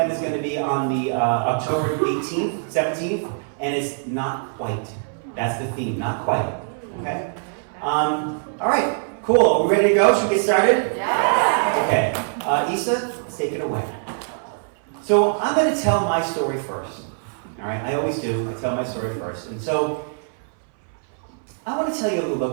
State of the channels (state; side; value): silent; left; 60 dB below the other